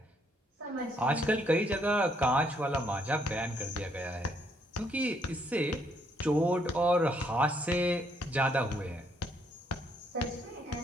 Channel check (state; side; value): normal; both; correlation 0.71